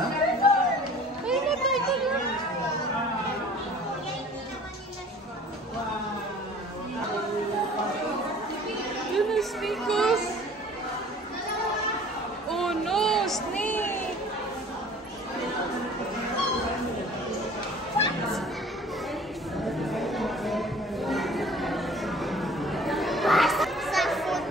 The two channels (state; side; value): normal; both; correlation 0.48